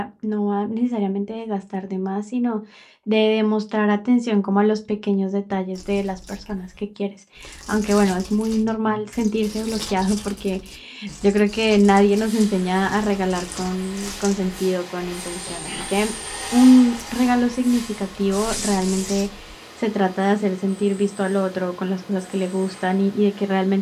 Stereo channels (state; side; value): identical; both; correlation 1.00